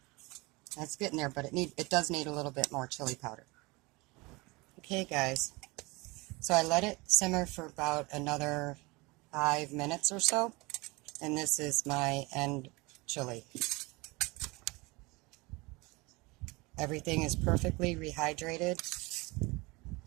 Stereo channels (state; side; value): quieter; left; 24.6 dB